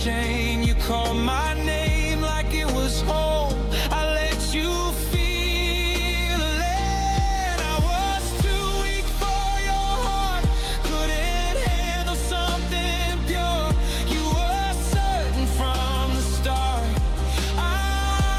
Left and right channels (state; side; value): identical; both; correlation 1.00